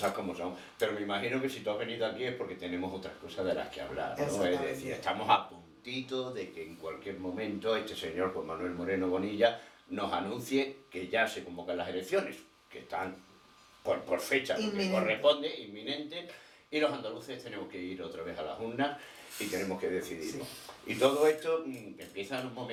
como son. Pero me imagino que si tú has venido aquí es porque tenemos otras cosas de las que hablar, ¿no? Es decir, estamos a puntito de que en cualquier momento este señor Juan Manuel Moreno Bonilla nos anuncie que ya se convocan las elecciones, que están por fecha, porque corresponde, inminente, y los andaluces tenemos que ir otra vez a las urnas y tenemos que decidirlo. Sí. Y todo esto empieza en un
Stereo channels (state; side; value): identical; both; correlation 1.00